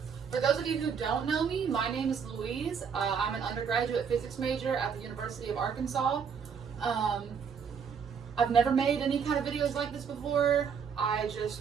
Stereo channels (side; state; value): left; quieter; 6.6 dB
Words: For those of you who don't know me, my name is Louise. I'm an undergraduate physics major at the University of Arkansas. I've never made any kind of videos like this before. I